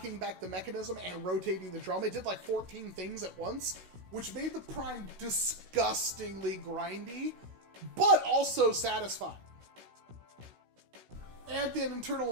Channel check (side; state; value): left; late; 16 ms